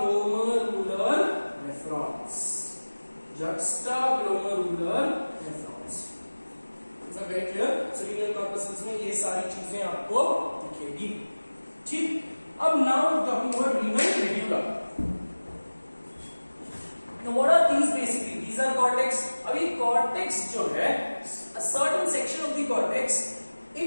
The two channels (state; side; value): inverted; both; correlation -1.00